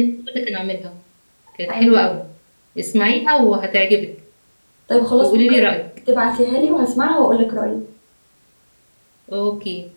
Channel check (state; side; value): inverted; both; correlation -1.00